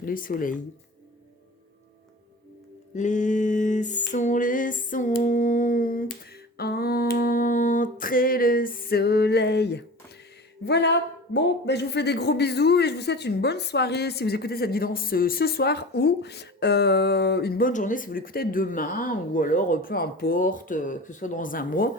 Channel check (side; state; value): both; normal; correlation 0.36